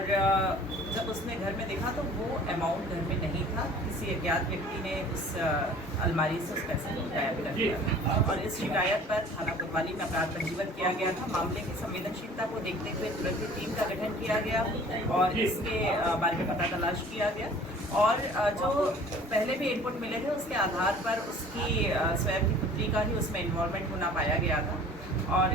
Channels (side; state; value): both; normal; correlation 0.48